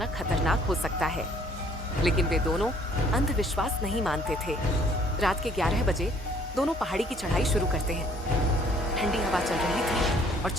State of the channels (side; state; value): both; normal; correlation 0.60